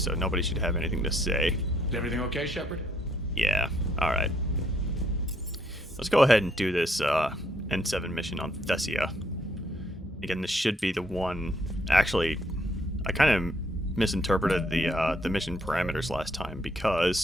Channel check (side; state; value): both; normal; correlation 0.70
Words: nobody should have anything to say. Is everything okay, Shepard? Yeah, alright. Let's go ahead and do this N7 mission on Thessia. Again, this should be the one... Actually, I kind of misinterpreted the mission parameters last time